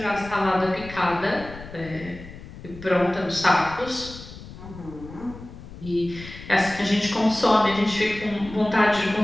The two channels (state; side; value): noise; left; rumble, 15 dB below the sound